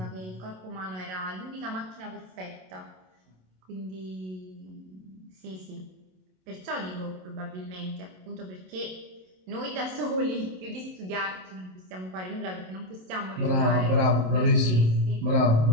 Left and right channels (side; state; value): left; late; 27 ms